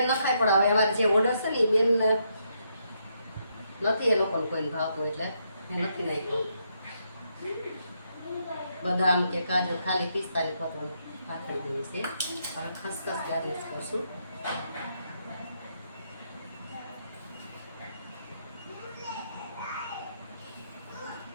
ન ખાય, પણ હવે અમારે જે ઓર્ડર છે ને એ બેન નથી, એ લોકોને કોઈને ભાવતું એટલે મેં નથી નાખ્યું. બદામ કે કાજુ ખાલી પિસ્તાની પતવાનું પાથરી દેવી છે. હવે ખસખસ ગાર્નિશ કરશું.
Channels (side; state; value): both; inverted; correlation -0.77